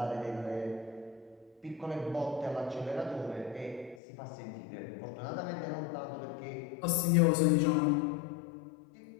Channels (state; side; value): drops out; right; at 4.0 s